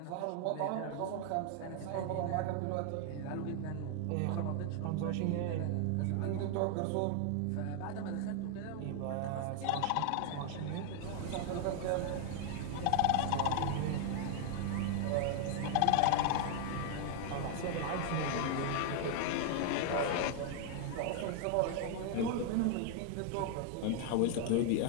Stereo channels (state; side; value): different; both; correlation 0.00